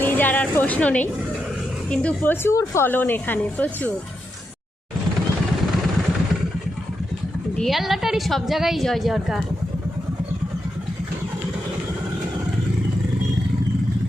নিয়ে যাওয়ার আর প্রশ্ন নেই, কিন্তু প্রচুর ফলন এখানে, প্রচুর। ডিয়ার লটারি সব জায়গায় জয় জয়কার।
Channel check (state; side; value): normal; both; correlation 0.85